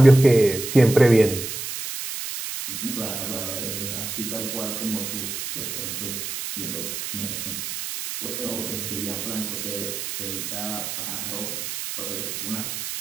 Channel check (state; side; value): noise; right; hiss, 5 dB below the sound